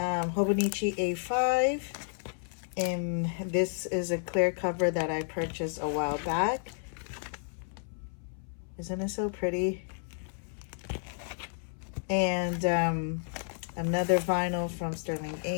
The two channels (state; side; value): silent; right; 57 dB below the other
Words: A5. And this is a clear cover that I purchased a while back. Isn't it so pretty? And another vinyl from Sterling